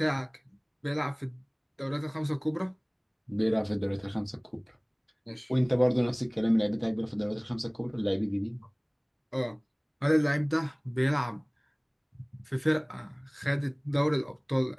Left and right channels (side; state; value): both; identical; correlation 1.00